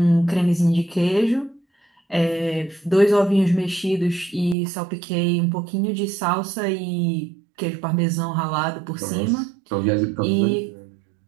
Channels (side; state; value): left; drops out; at 4.5 s